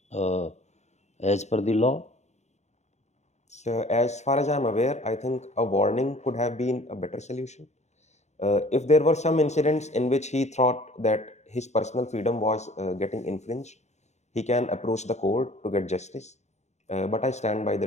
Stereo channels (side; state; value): right; late; 0.33 ms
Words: as per the law? So as far as I'm aware, I think a warning could have been a better solution. If there were some incidents in which he thought that his personal freedom was getting infringed, he can approach the court to get justice. But I stand by the